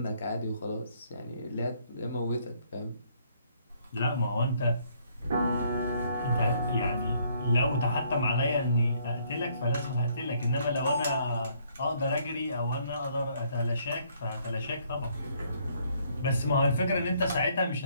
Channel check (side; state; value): both; inverted; correlation -0.67